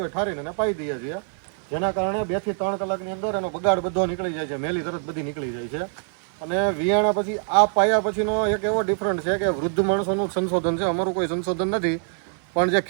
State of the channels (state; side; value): silent; left; 58 dB below the other